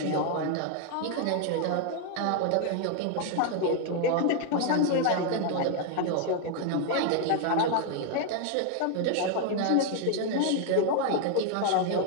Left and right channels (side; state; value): both; different; correlation 0.00